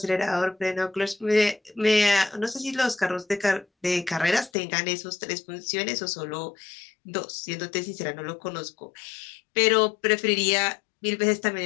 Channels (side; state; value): right; drops out; at 4.5 s